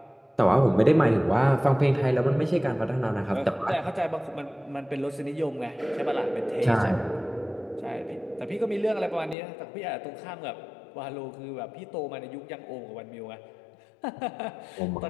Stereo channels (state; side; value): drops out; right; at 9.3 s